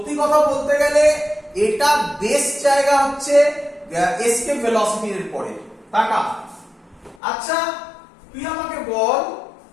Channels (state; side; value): drops out; right; at 7.2 s